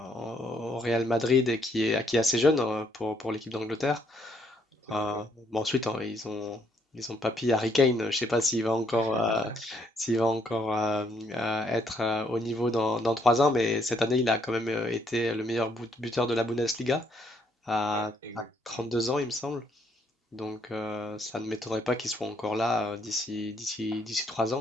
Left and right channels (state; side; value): normal; both; correlation 0.70